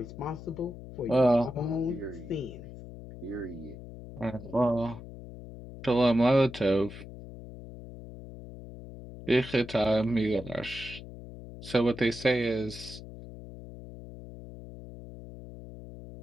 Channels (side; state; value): left; noise; hum, 14 dB below the sound